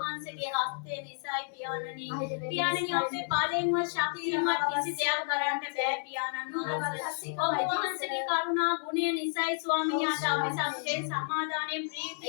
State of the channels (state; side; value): silent; right; digital silence